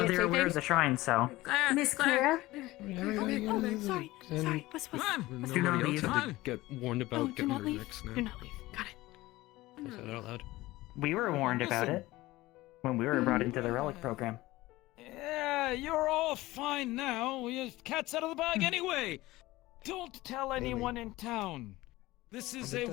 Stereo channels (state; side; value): quieter; right; 18.5 dB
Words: they're say aware of things? the shrine, so. Miss Clara? Okay, sorry. Sorry, what's... Then Do not nobody else leave. had to get warned about Oh, do getting not rid of leave. Rex now. Do not leave. Got it. I'll say that out loud. We were warned about Listen. it when we were brought into the relic program. Yeah, you're all fine now. Your cat's out of the bag anyway. Don't tell anyone in town. This is On the a